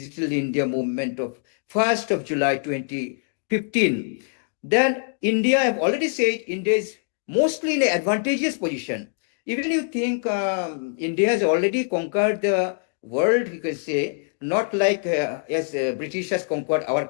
India movement of 1st of July 2015. Then India, I've already said, India is mostly in an advantageous position. Even you think India has already conquered the world, you can say, not like as British has conquered our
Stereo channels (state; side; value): silent; right; 62 dB below the other